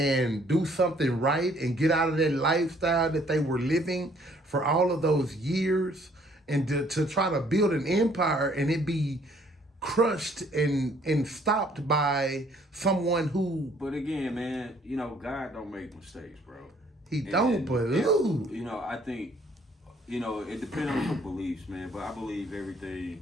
do something right and get out of that lifestyle that they were living for all of those years, and to try to build an empire and it be crushed and stopped by someone who. But again, man, you know, God don't make mistakes, bro. He don't, but you know, I think, you know, it depends on your beliefs, man. But I believe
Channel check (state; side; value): normal; both; correlation 0.62